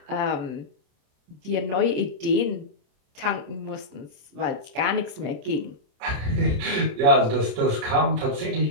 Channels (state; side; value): late; left; 27 ms